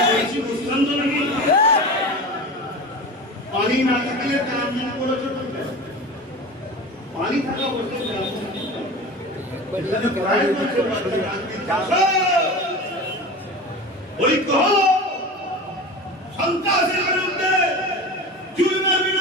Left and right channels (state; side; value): normal; both; correlation 0.31